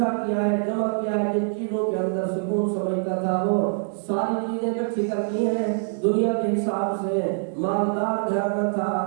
کیا ہے, جمع کیا ہے. جن چیزوں کے اندر سکون سمجھتا تھا وہ ساری چیزیں اکٹھی کر کی ہیں دنیا کے حساب سے. مالدار گھر میں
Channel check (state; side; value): silent; left; digital silence